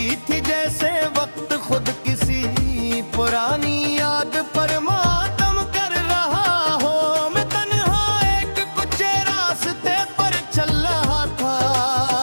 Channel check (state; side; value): inverted; both; correlation -1.00